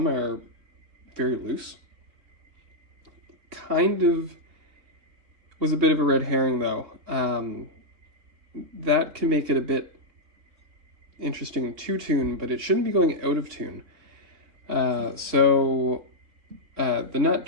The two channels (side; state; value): left; late; 3.8 ms